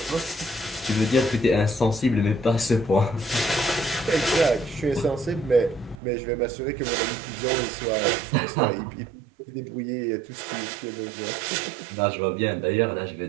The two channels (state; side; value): drops out; left; at 6.0 s